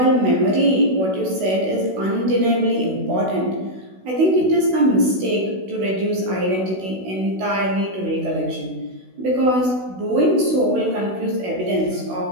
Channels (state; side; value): late; left; 16 ms